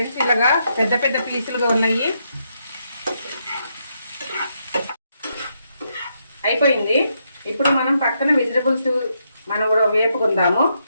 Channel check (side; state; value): both; inverted; correlation -0.79